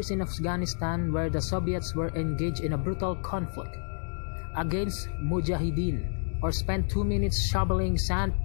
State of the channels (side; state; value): right; silent; digital silence